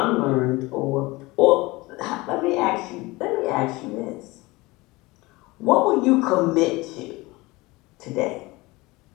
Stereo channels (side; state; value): right; quieter; 22.1 dB